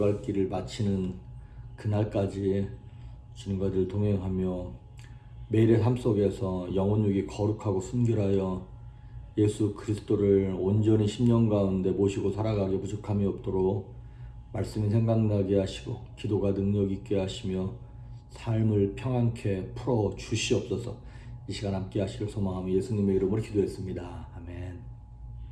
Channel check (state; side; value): identical; both; correlation 1.00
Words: 길을 마치는 그날까지 주님과 늘 동행하며 매일의 삶 속에서 영혼육이 거룩하고 순결하여 예수 그리스도를 온전히 10년 가운데 모시고 살아가게 부족함이 없도록 말씀이 생각나게 하시고 기도가 능력 있게 하시며 삶을 평안케 풀어 주시옵소서. 이 시간 함께 하시길 소망하며 예수님의 이름으로 기도했습니다. 아멘.